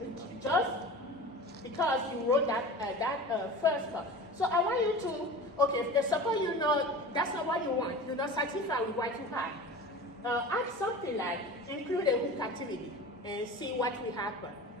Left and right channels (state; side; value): normal; both; correlation 0.35